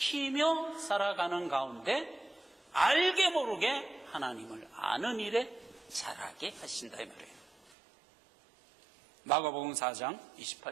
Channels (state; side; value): drops out; left; at 7.7 s